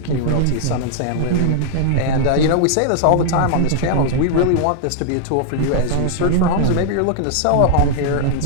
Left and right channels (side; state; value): both; different; correlation -0.01